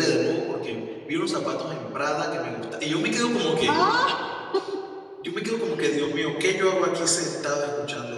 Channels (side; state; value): both; identical; correlation 1.00